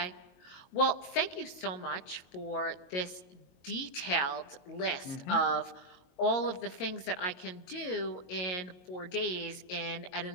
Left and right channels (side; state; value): right; late; 22 ms